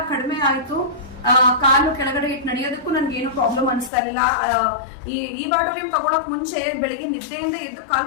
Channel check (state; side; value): drops out; right; at 3.9 s